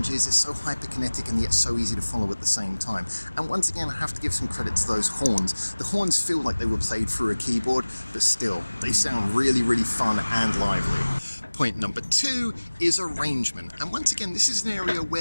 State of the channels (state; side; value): inverted; both; correlation -1.00